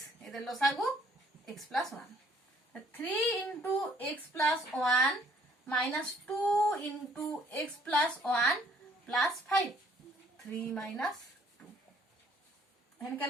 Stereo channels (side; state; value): both; normal; correlation 0.62